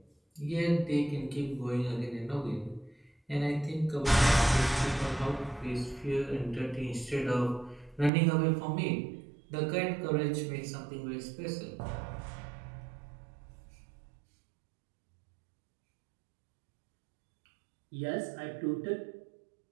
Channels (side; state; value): left; drops out; at 8.1 s